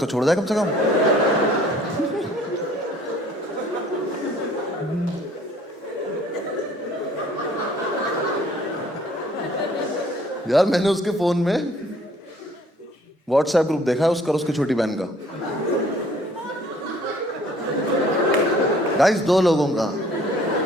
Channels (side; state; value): both; normal; correlation 0.56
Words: छोड़ जाए कम से कम। यार मैंने उसके फोन में व्हाट्सएप ग्रुप देखा है उसका और उसकी छोटी बहन का। गाइस 2 लोगों का